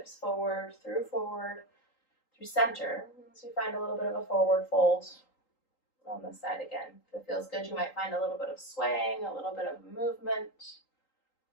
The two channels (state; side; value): late; right; 3.8 ms